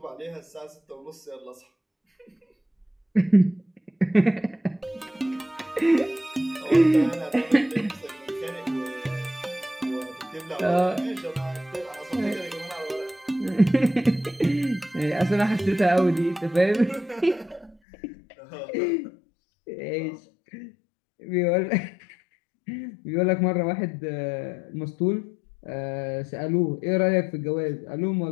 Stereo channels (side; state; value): right; drops out; at 17.8 s